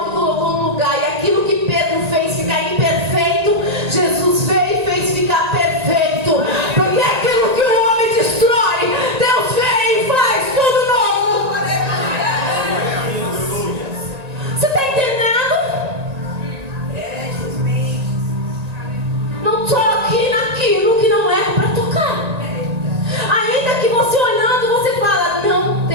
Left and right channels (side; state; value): left; late; 1.9 ms